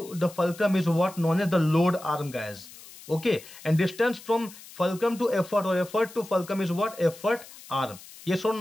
the fulcrum is what, known as the load arm, guys. Okay, and distance from fulcrum to effort or effort to fulcrum is what, effort arm. Yes or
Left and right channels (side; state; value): left; noise; hiss, 18 dB below the sound